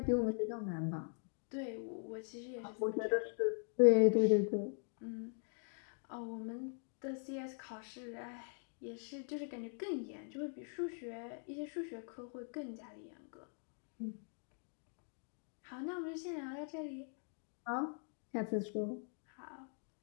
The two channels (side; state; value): right; silent; 50 dB below the other